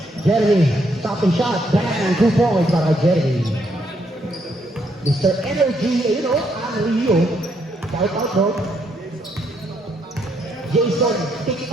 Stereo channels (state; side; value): normal; both; correlation 0.74